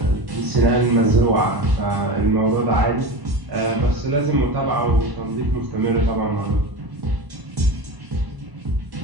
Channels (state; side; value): late; left; 1.1 ms